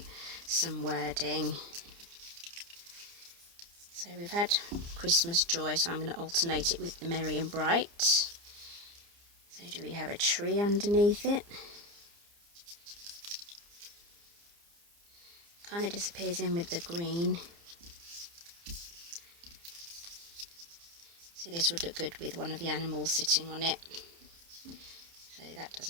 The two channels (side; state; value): left; late; 29 ms